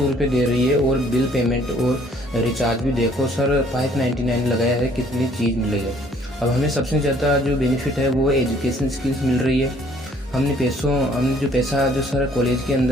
रुपये दे रही है, और बिल पेमेंट और रिचार्ज भी देखो सर 599 लगाया है, कितनी चीज़ मिल रही है। अब हमें सबसे ज़्यादा जो बेनिफिट है वो एजुकेशन स्किल्स मिल रही है। हमने जो पैसा जो सर कॉलेज के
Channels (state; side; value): normal; both; correlation 0.60